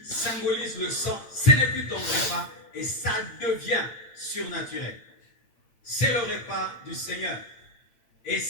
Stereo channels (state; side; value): late; right; 8.9 ms